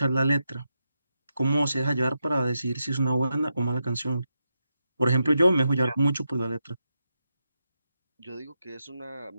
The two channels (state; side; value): inverted; both; correlation -0.86